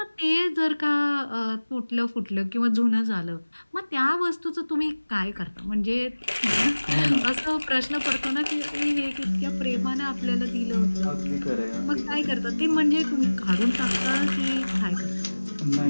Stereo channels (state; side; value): inverted; both; correlation -1.00